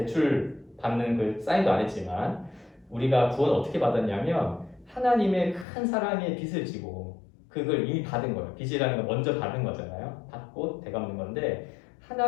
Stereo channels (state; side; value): drops out; right; at 5.7 s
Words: 받는 그 사인도 안 했지만 우리가 구원 어떻게 받았냐면 하나님의 큰 사랑의 빚을 지고 그걸 이미 받은 거예요. 빚이라는 건 먼저 받은 거잖아요. 받고 되갚는 건데